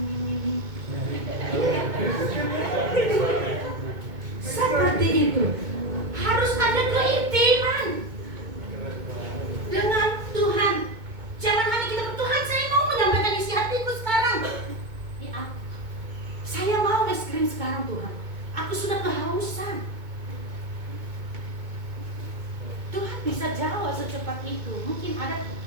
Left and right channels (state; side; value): late; left; 2.2 ms